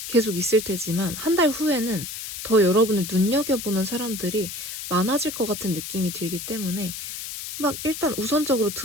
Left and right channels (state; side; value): noise; left; hiss, 8 dB below the sound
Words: 계속 있을 테지만 한 달 후에는 더 여러분을 눈여겨보는 사람들이 많아질 것 같은 느낌이 들기 때문에 막 일단 우선적으로